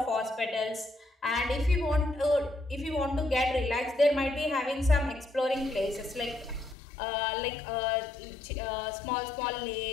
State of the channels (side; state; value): right; drops out; at 6.8 s